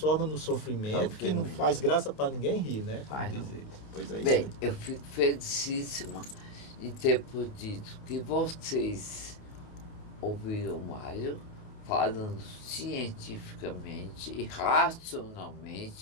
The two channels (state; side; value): late; right; 28 ms